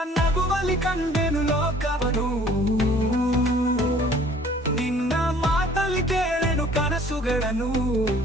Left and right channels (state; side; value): normal; both; correlation 0.54